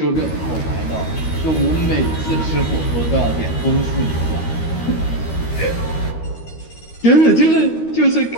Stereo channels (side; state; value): right; late; 13 ms